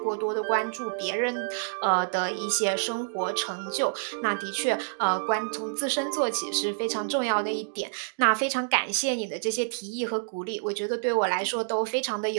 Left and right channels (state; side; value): silent; left; digital silence